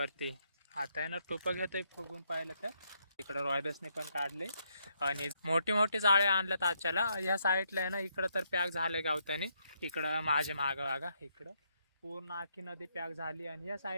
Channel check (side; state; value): both; inverted; correlation -0.76